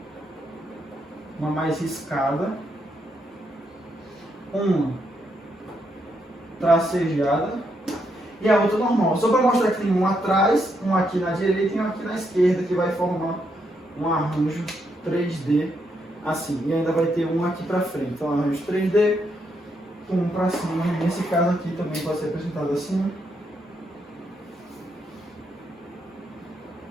uma mais riscada, uma tracejada e a outra normal. Só para mostrar que tem um atrás, um aqui na direita e um aqui na esquerda, que vai formar um arranjo 3D assim. E ainda vai ter um aqui para frente. Então, arranjo 3D, um para cima. Nesse caso aqui também pode ser representado assim.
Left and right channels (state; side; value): normal; both; correlation 0.78